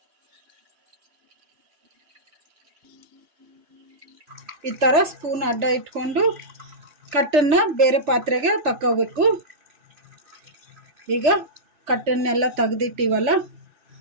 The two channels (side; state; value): left; late; 3.4 ms